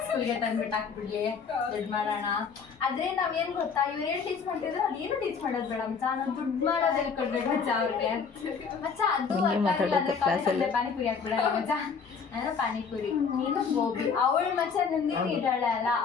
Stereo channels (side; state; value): right; quieter; 5.8 dB